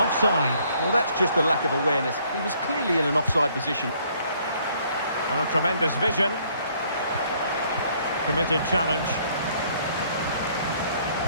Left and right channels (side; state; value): both; inverted; correlation -0.64